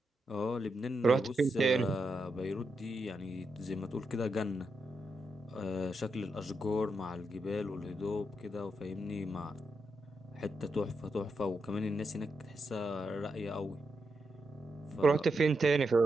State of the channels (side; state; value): both; normal; correlation 0.85